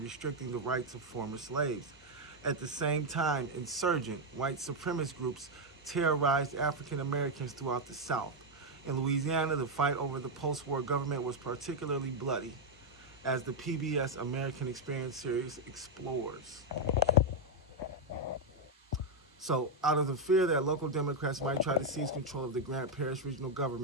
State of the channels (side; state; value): both; normal; correlation 0.01